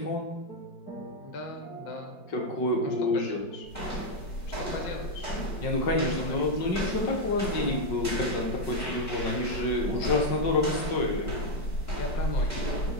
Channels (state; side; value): late; right; 5.4 ms